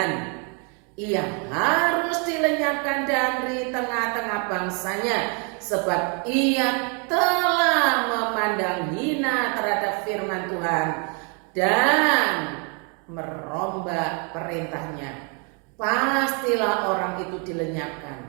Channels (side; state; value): left; quieter; 36.5 dB